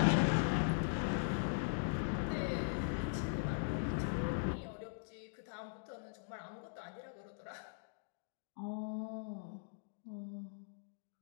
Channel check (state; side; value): silent; right; digital silence